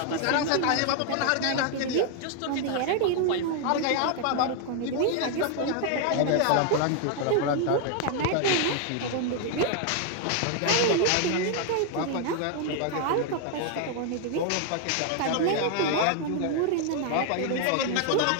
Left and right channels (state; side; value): different; both; correlation 0.00